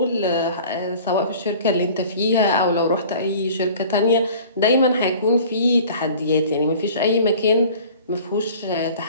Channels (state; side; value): inverted; both; correlation -0.46